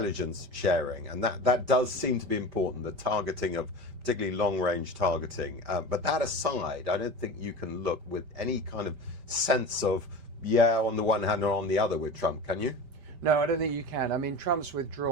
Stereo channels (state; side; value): late; left; 5.1 ms